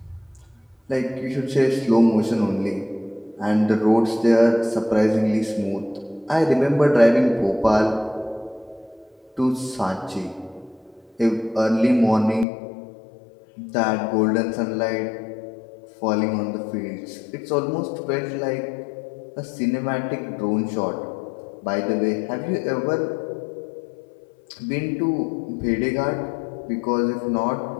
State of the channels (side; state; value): right; drops out; at 12.5 s